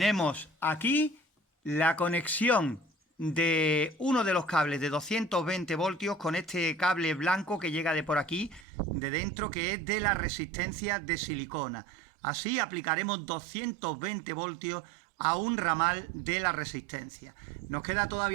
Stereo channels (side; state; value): left; drops out; at 8.7 s